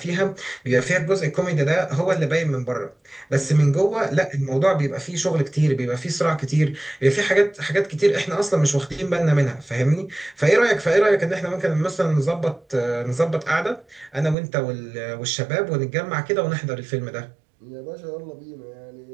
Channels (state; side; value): drops out; left; at 14.4 s